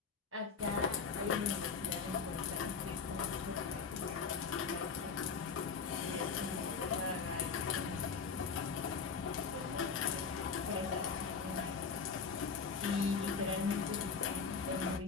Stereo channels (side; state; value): right; quieter; 5.7 dB